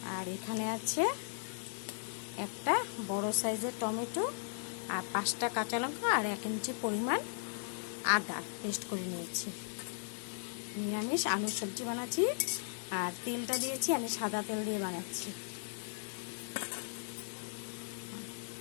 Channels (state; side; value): silent; right; digital silence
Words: আর এখানে আছে একটা বড় সাইজের টমেটো আর 5টা কাঁচা লঙ্কা আর 1 ইঞ্চি পরিমাণ আদা পেস্ট করে নিয়েছি। নিরামিষ আলুর সবজি বানাচ্ছি আর তেলটা দিয়েছি আমি সাদা তেল দিয়ে বানাচ্ছি।